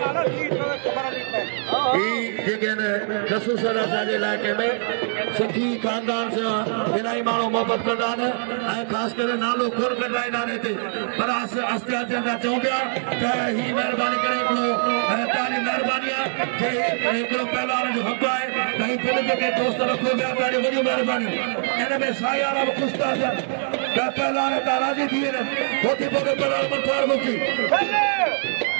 रसूल असांजे इलाइक़े में सिंधी खानदान से इलाही माण्हू मोहबत कंदा आहिनि ऐं ख़ासि करे नालो खोल कढाईंदा आहिनि हिते पर आस्ते आस्ते असां चऊं पिया त ही महिरबानी करे हिकिड़ो तव्हांजी महिरबानी आहे जे हिकिड़ो पहलवान जो हक़ आहे त ही पिण जेके दोस्त रखो पिया तव्हांजी वॾियूं महिरबानियूं इन में साई वारा बि ख़ुशि था थियनि त पहलवान हितां राज़ी थी वञनि पोइ थी पोइ पहलवान मथार मुकी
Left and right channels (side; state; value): left; silent; 63 dB below the other